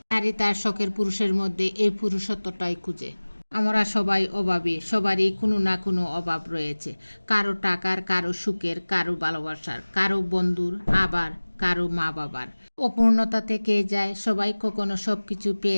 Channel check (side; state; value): both; inverted; correlation -1.00